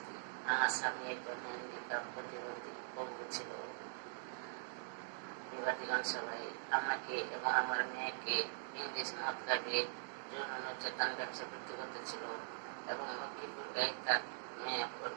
আমার স্বামী একজন হ্যান্ডিক্যাপ প্রতিবন্ধী পঙ্গু ছিল। বিবাদীগণ সবাই আমাকে এবং আমার মেয়েকে ইংলিশ মদ খাইয়ে যৌন নির্যাতন ব্যবসা বৃদ্ধি করতেছিল এবং লক্ষ্মীপুর গায়ে তার মেয়ে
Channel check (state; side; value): silent; left; digital silence